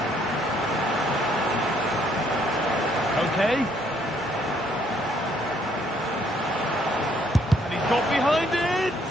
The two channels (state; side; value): normal; both; correlation 0.67